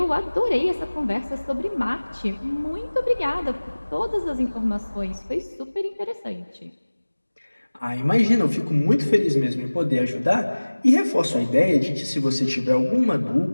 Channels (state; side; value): inverted; both; correlation -1.00